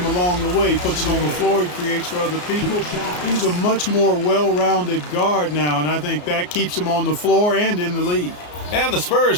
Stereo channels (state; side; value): late; right; 34 ms